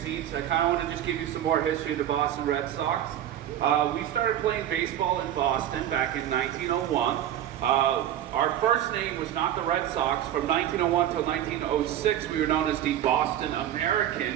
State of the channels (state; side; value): quieter; left; 11.3 dB